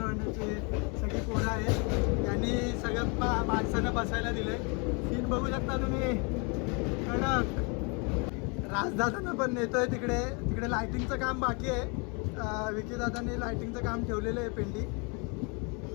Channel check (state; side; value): quieter; right; 32.9 dB